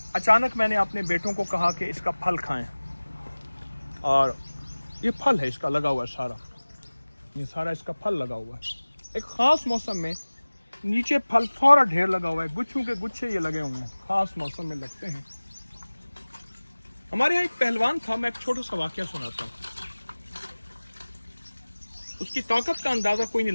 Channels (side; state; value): both; inverted; correlation -1.00